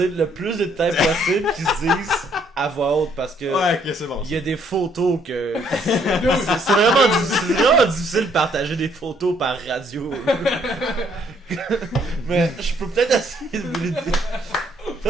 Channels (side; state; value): both; normal; correlation 0.67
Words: dire le plus de détails possible qu'ils se disent à voix haute parce que Ouais, ok, c'est bon. il y a des photos que c'est vraiment difficile de partager des photos par radio. Mais je peux peut-être essayer de vous le dire.